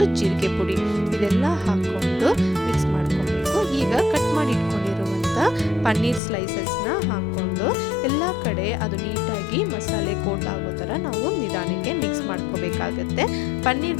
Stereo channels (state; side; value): drops out; right; at 6.2 s